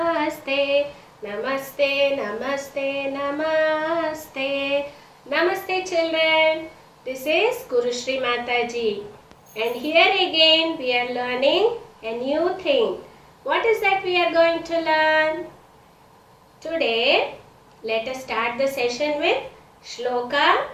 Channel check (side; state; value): both; identical; correlation 1.00